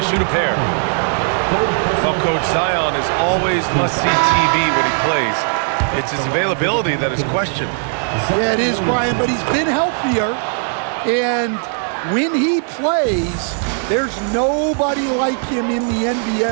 shoot a pair. Well, Coach, Zion is always must-see TV when he plays. It's his availability that is questioned. Yeah, it is, Brian, but he's been healthier, and when he plays, there's nobody like him in the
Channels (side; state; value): left; silent; 57 dB below the other